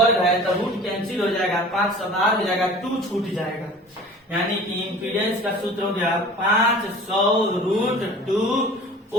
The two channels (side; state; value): both; normal; correlation 0.43